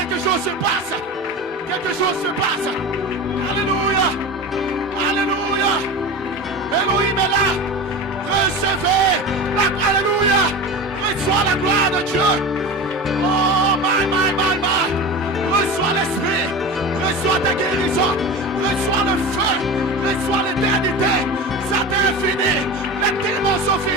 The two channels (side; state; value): both; normal; correlation 0.29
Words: chose se passe. Quelque chose se passe. Alléluia. Alléluia. Elohim est là. Recevez la gloire. Alléluia. Reçois la gloire de Dieu. Oh, my. Reçois l'esprit. Reçois ta guérison. Reçois le feu. Reçois l'éternité. Ça t'est fini. Les démons sont